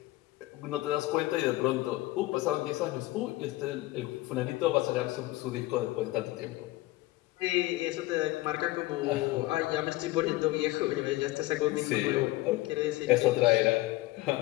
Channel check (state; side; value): quieter; right; 18.7 dB